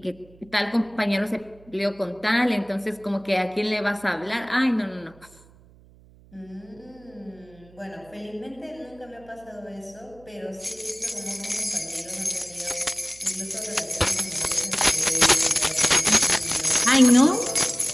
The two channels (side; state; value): right; noise; hum, 26 dB below the sound